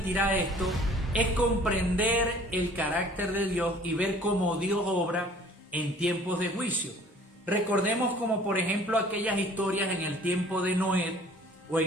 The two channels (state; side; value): normal; both; correlation 0.52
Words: esto, es comprender el carácter de Dios y ver cómo Dios obra en tiempos de juicio. Recordemos como por ejemplo aquellas historias en el tiempo de Noé o